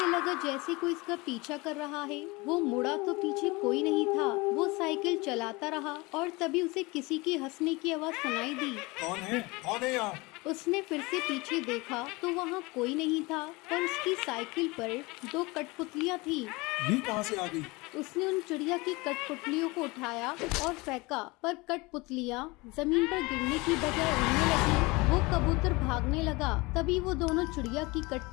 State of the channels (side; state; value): right; quieter; 24.2 dB